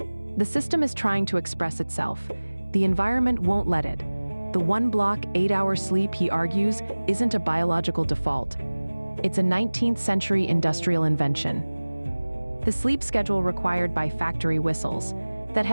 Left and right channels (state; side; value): inverted; both; correlation -1.00